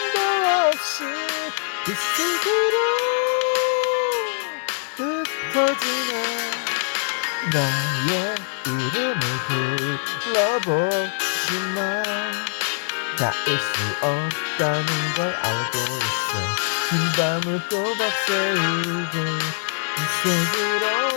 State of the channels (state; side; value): silent; right; digital silence